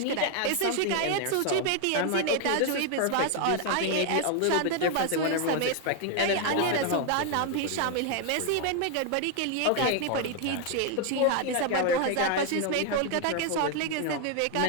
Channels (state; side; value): different; both; correlation 0.00